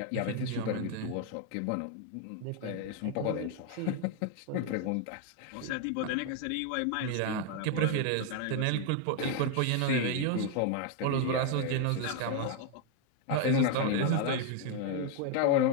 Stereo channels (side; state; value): both; different; correlation 0.01